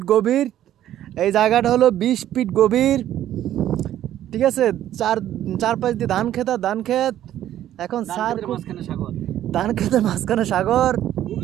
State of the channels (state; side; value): quieter; left; 12.0 dB